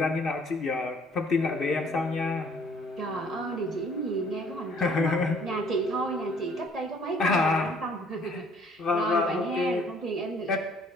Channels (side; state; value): both; normal; correlation 0.59